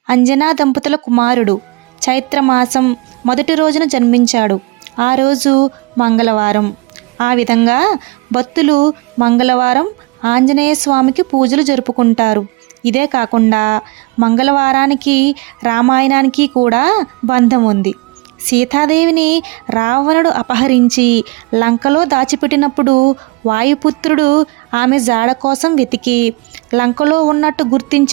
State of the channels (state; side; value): quieter; left; 24.8 dB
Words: అంజనా దంపతుల కుమారుడు. చైత్రమాసం మొదటి రోజున జన్మించాడు. ఆ రోజు మంగళవారం. ఆ విధంగా భక్తులు మంగళవారం ఆంజనేయ స్వామికి పూజలు జరుపుకుంటారు. ఇదే కాకుండా మంగళవారానికి రామాయణానికి కూడా బంధం ఉంది. సీతాదేవిని రావణుడు అపహరించి లంకలో దాచిపెట్టినప్పుడు వాయుపుత్రుడు ఆమె జాడ కోసం వెతికి లంకలో ఉన్నట్టు